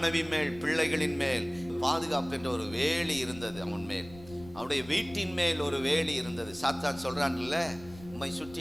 மேல், பிள்ளைகளின் மேல் பாதுகாப்பு என்ற ஒரு வேலி இருந்தது. அவன் மேல், அவருடைய வீட்டின் மேல் ஒரு வேலி இருந்தது. சாத்தான் சொல்றான்ல, உம்மை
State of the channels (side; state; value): left; noise; rumble, 18 dB below the sound